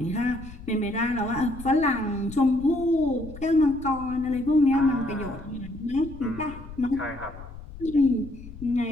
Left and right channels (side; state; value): left; noise; rumble, 15 dB below the sound